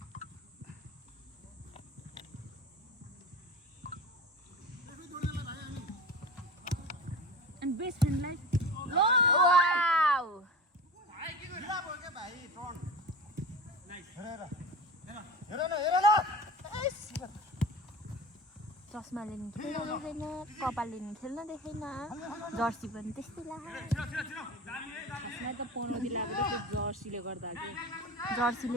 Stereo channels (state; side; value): normal; both; correlation 0.32